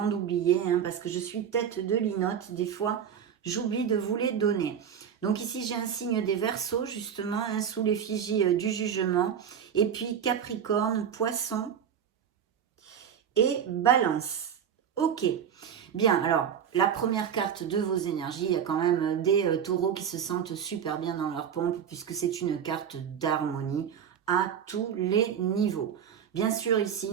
d'oublier, hein, parce que je suis tête de linotte. Des fois, j'oublie de vous les donner. Donc ici, j'ai un signe des Verseaux, justement, hein, sous l'effigie du jugement. Et puis Capricorne, Poisson et Balance. Ok. Bien, alors, la première carte de vos énergies, il y a quand même des taureaux qui se sentent super bien dans leur pompe, puisque c'est une carte d'harmonie à tous les niveaux. Bien sûr, ici,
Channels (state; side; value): quieter; left; 8.2 dB